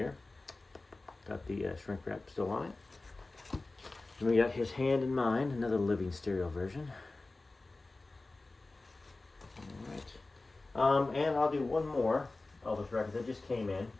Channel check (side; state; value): right; quieter; 3.2 dB